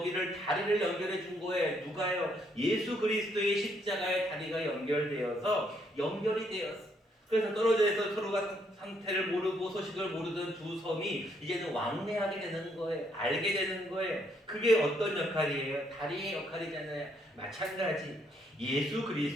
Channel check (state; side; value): normal; both; correlation 0.72